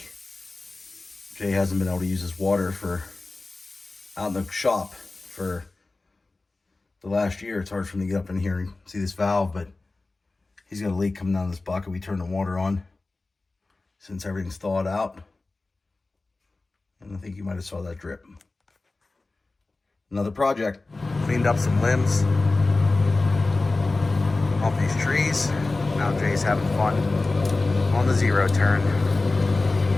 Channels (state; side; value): quieter; right; 3.4 dB